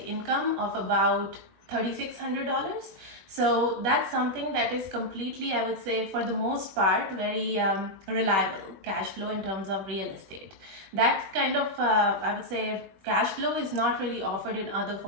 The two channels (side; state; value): left; late; 21 ms